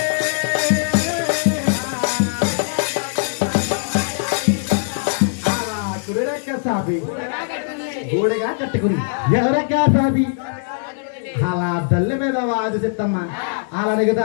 ఎవరెక్క సాపి గోడగా కట్టుకుని ఎవరెక్క సాపి అలా తల్లి మీద వాది చెత్తమ్మ అలా అడుగుతా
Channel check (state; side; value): silent; right; digital silence